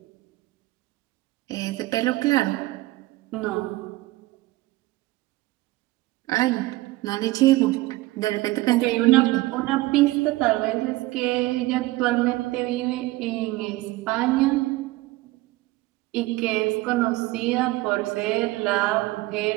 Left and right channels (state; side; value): quieter; left; 19.2 dB